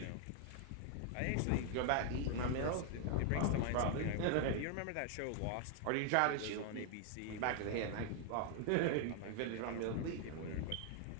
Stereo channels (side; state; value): both; different; correlation 0.00